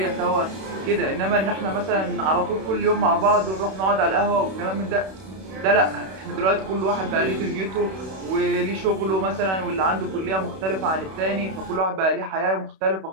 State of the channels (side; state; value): left; late; 31 ms